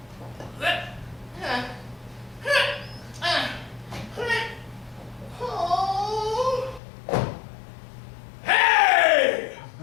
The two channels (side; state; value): right; drops out; at 6.8 s